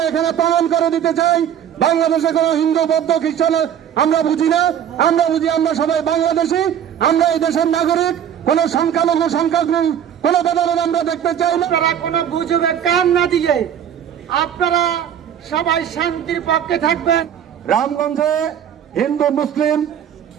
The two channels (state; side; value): quieter; left; 9.3 dB